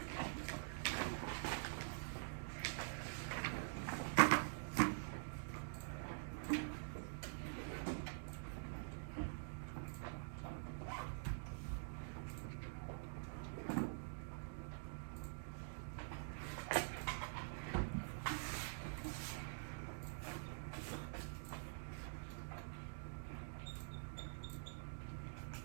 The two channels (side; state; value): left; silent; digital silence